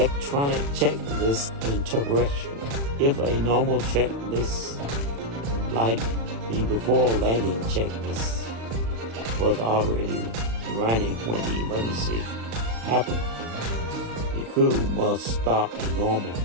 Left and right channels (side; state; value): left; late; 35 ms